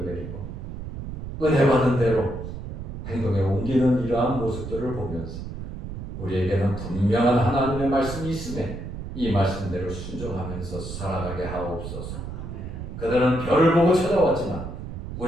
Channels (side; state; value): right; noise; rumble, 8 dB below the sound